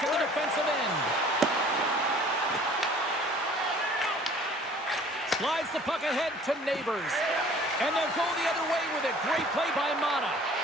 in the defensive end. Slides the puck ahead to Neighbors. And they'll go the other way with it. Great play by Mata.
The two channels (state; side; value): normal; both; correlation 0.51